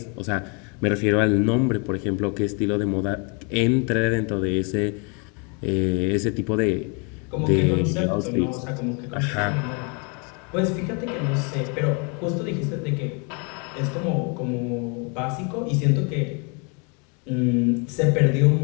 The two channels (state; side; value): quieter; right; 34.7 dB